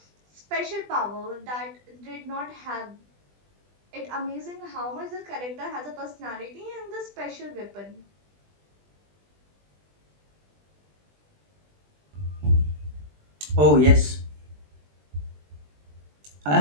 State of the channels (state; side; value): late; left; 20 ms